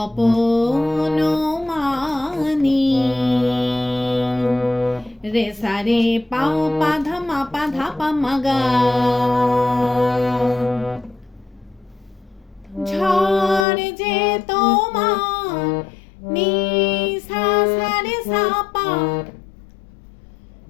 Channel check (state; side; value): drops out; right; at 13.7 s